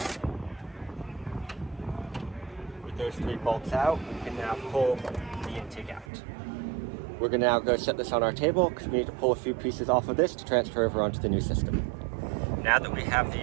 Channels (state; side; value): drops out; left; at 6.1 s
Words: With those 3 bolts out, we can now pull the intake out. We're going to now go set this on our table because we need to pull a few pieces off of this to transfer over onto the new system. Now that we have